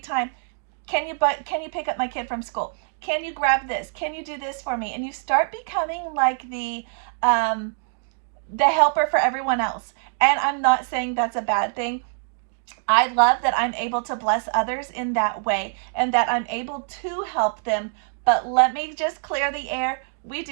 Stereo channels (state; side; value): silent; left; 62 dB below the other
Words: Can you pick up my kid from school? Can you grab this? Can you do this for me? And you start becoming like the helper for everyone else. And I'm not saying that's a bad thing. I love that I'm able to bless others in that way and that I'm able to help them. But let me just clear the air. We